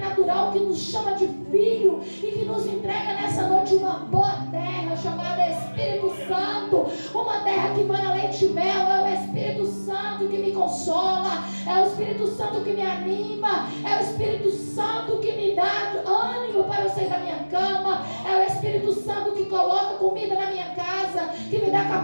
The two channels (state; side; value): inverted; both; correlation -1.00